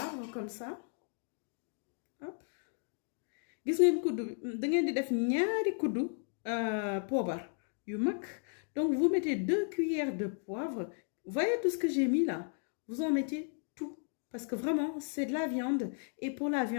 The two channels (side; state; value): right; silent; 55 dB below the other